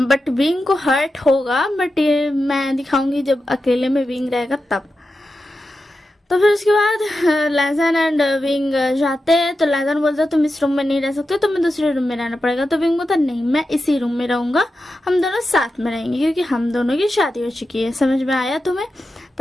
विंग को हर्ट होगा, बट ये मैं दिखाऊंगी जब अकेले में विंग रहेगा तब। तो फिर उसके बाद लैजन एंड विंग जाते हैं, तो लैजन बोलता है तुम इस रूम में नहीं रह सकते, तुम्हें दूसरे रूम में रहना पड़ेगा। तो विंग बोलता नहीं मैं इसी रूम में रहूंगा, हम दोनों साथ में रहेंगे, क्योंकि हम दोनों की शादी हो चुकी है। समझ में आया तुम्हें?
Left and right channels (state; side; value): normal; both; correlation 0.91